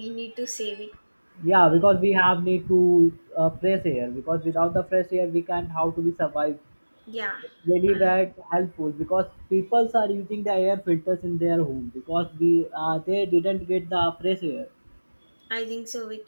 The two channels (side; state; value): both; inverted; correlation -1.00